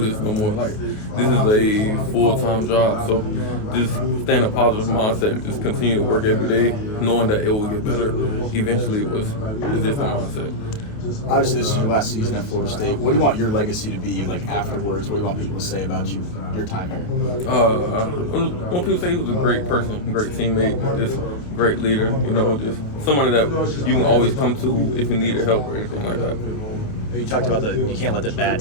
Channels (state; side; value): late; right; 28 ms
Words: no more. Like, this is a full-time job, so just stay in a positive mindset and just continue to work every day, knowing that it will get better. Eventually, it was just a mindset. Obviously, this is your last season at Florida State. What do you want your legacy to be, like, afterwards? What do you want people to say about you, your time here? When people say he was a great person, great teammate, just great leader, you know, just somebody that you can always come to if you needed help or anything like that. You talked about you can't let the bad